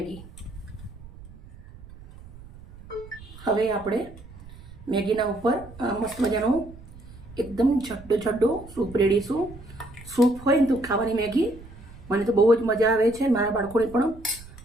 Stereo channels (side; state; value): right; noise; rumble, 18 dB below the sound